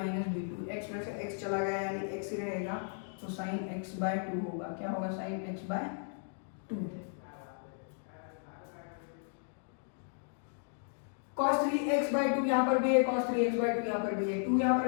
b, 2x में से x चला गया यानी x ही रहेगा, तो साइन x बाय 2 होगा। क्या होगा sine x by 2। cos 3x by 2 यहाँ पर भी है, cos 3x बाय 2 यहाँ पर भी है, 2 यहाँ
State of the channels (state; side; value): silent; right; digital silence